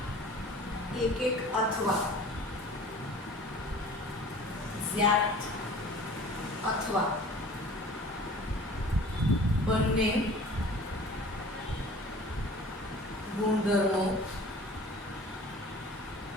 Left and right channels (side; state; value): both; normal; correlation 0.45